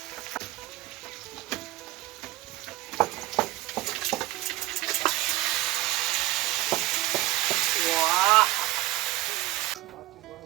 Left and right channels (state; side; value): quieter; left; 18.0 dB